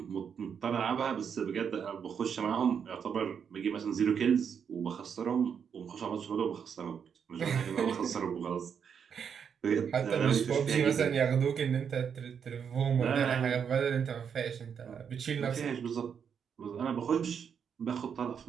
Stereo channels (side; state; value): left; quieter; 7.3 dB